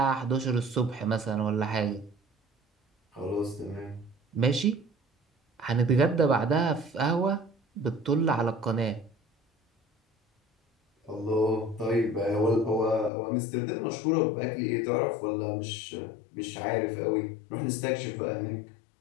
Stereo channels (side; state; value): right; drops out; at 13.1 s